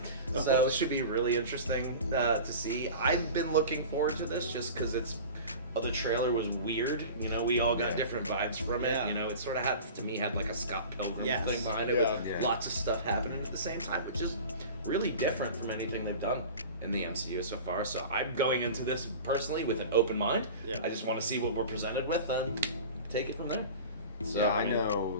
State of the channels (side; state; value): both; inverted; correlation -0.36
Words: So it should be really interesting to see. I've been looking forward to this just because the trailer was weird. You know, we all got different vibes from it. Yeah. You know, it sort of had like a Scott Pilgrim thing behind it with lots of stuff happening at the same time, which is really different from anything they've done in the MCU so far. So I'm going into this personally with an open mind. Yeah. I just want to see what we're presented with and take it from there. So I know